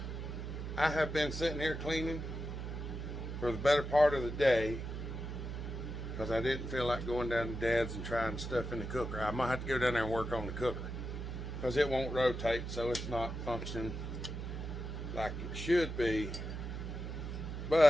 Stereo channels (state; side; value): noise; right; hum, 6 dB below the sound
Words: I have been sitting here cleaning for the better part of the day because I didn't feel like going down to Dad's and trying stuff in the cooker. I might have to go down there and work on the cooker because it won't rotate, so it's not functioning like it should be.